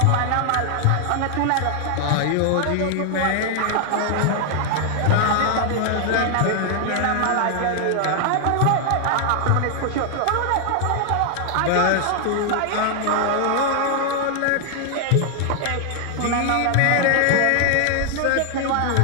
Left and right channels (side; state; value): both; different; correlation 0.00